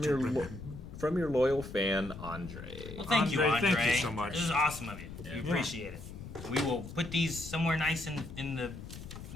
From your loyal fan, Andre. Well, thank you, Andre. Thank you so much. This is awesome of you. Yeah. We appreciate it. We will put these somewhere nice in the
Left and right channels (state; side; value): noise; left; rumble, 12 dB below the sound